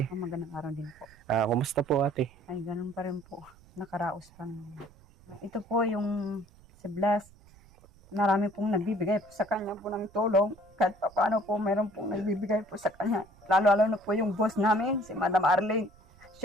Magandang araw din po. Kumusta po ate? Ay, ganun pa rin po. Nakaraos pa naman. Ito po yung si Blas. Marami pong nagbibigay po sa kanya po ng tulong. Kahit pa paano po, mayroon pong nagbibigay po sa kanya. Lalo-lalo na po yung boss namin, si Madam Arlene.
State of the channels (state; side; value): noise; right; rumble, 26 dB below the sound